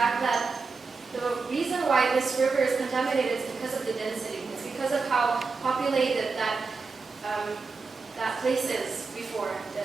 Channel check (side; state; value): left; quieter; 4.5 dB